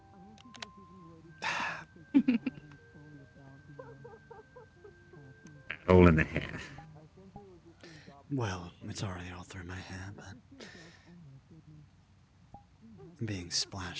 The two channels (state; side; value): identical; both; correlation 1.00